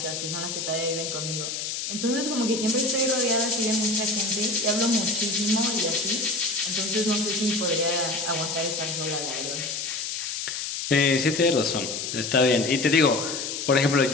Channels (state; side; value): noise; left; hiss, 4 dB below the sound